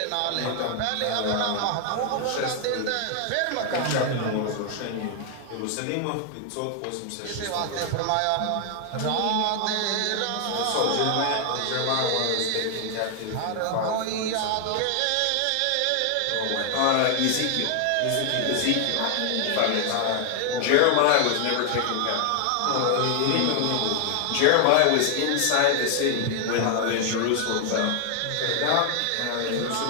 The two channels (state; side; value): different; both; correlation 0.00